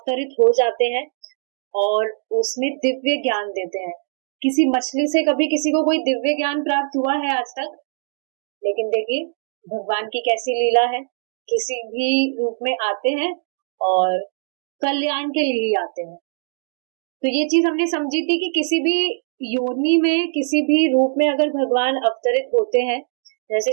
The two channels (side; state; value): left; silent; digital silence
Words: हो जाते हैं और उसमें दिव्य ज्ञान देते हैं। किसी मछली से कभी किसी को कोई दिव्य ज्ञान प्राप्त हुआ है आज तक? लेकिन देखिए भगवान की कैसी लीला है, किसी भी रूप में आते हैं और कल्याण के लिए ही आते हैं। तो ये चीज हमने समझी थी कि किसी भी योनि में किसी भी रूप में अगर भगवान अवतरित होते हैं, जैसे